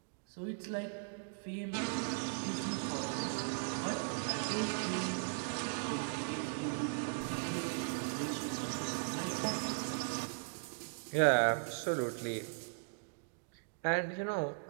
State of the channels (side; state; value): left; silent; digital silence